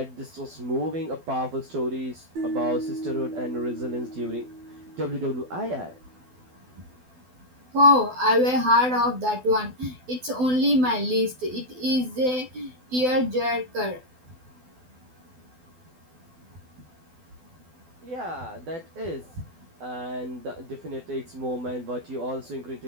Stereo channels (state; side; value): late; left; 12 ms